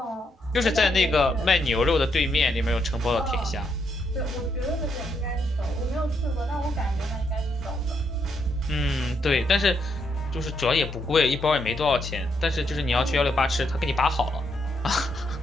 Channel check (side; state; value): both; normal; correlation 0.77